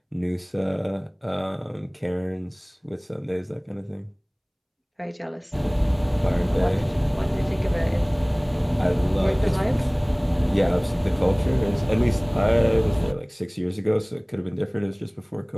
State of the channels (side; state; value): both; identical; correlation 1.00